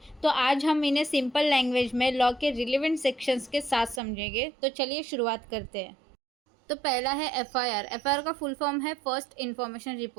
तो आज हम इन्हें सिंपल लैंग्वेज में लॉ के रिलेवेंट सेक्शंस के साथ समझेंगे। तो चलिए शुरुआत करते हैं। तो पहला है एफआईआर। एफआईआर का फुल फॉर्म है first information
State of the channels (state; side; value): drops out; left; at 4.0 s